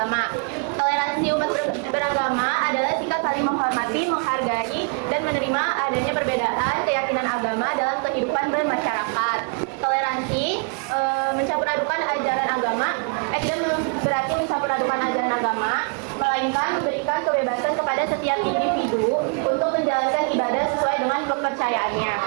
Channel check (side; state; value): left; quieter; 39.2 dB